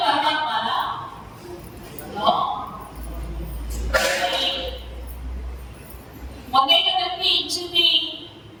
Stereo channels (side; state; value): both; identical; correlation 1.00